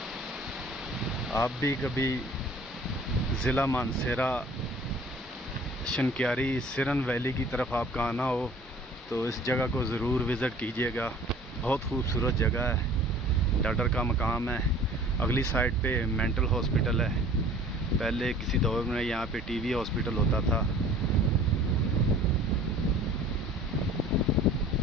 आप भी कभी ज़िला मानसेरा शनक्यारी सिरन वैली की तरफ आपका आना हो तो इस जगह को ज़रूर विज़िट कीजिएगा। बहुत खूबसूरत जगह है। डडर का मकाम है। अगली साइड पे मेंटल हॉस्पिटल है। पहले किसी दौर में यहाँ पे टीबी हॉस्पिटल होता था।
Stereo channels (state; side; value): normal; both; correlation 0.48